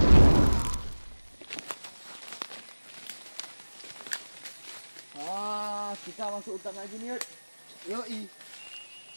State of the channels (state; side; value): inverted; both; correlation -1.00